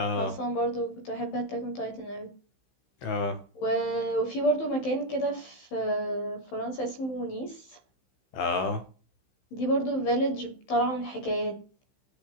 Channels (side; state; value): right; late; 15 ms